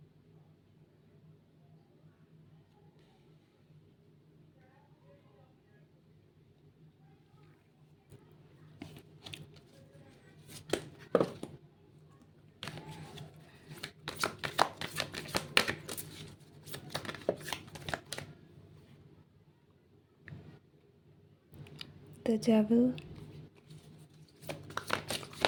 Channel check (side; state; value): both; identical; correlation 1.00